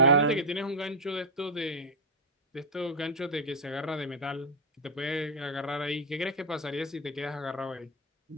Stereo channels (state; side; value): normal; both; correlation -0.01